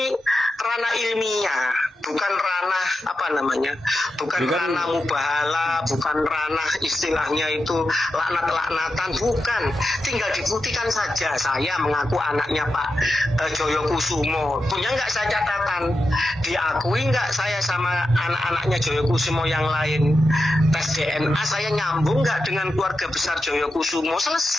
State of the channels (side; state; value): both; normal; correlation 0.89